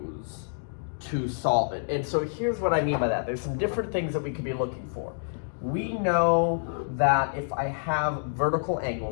to solve it. And so here's what I mean by that. There's some different things that we could be looking for. We know that if I have vertical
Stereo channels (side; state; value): right; silent; digital silence